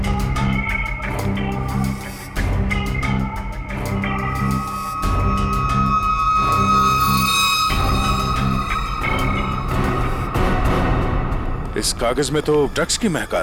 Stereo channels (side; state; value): both; identical; correlation 1.00